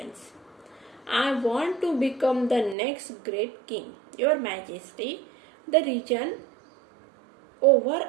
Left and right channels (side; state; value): left; drops out; at 2.8 s